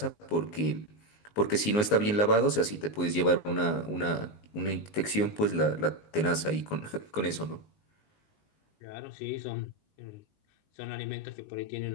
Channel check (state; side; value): late; right; 19 ms